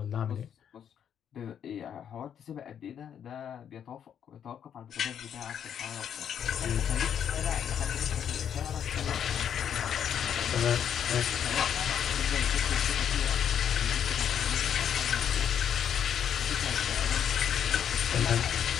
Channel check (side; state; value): right; quieter; 8.8 dB